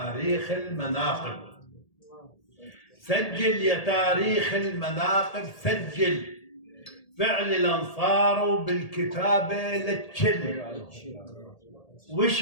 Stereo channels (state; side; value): late; right; 1.8 ms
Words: المناقب. سجل يا تاريخ المناقب. سجل فعل الأنصار وبالكتابة لتشل